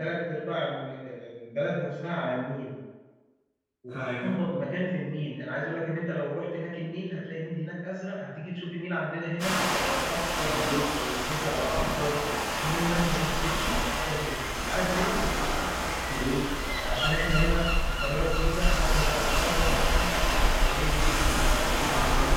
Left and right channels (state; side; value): identical; both; correlation 1.00